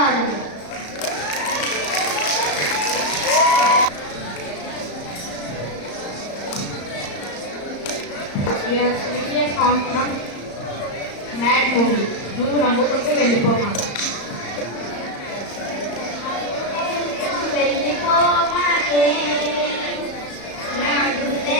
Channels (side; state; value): right; late; 34 ms